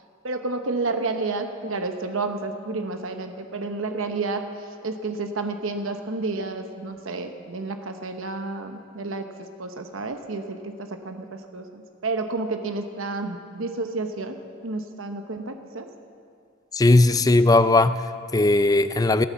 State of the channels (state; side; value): normal; both; correlation 0.52